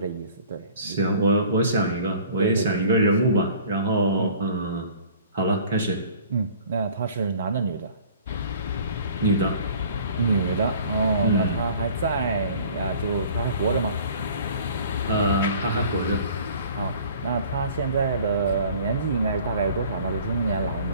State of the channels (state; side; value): inverted; both; correlation -0.50